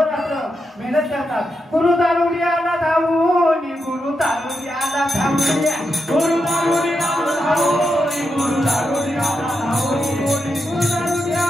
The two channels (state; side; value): normal; both; correlation 0.85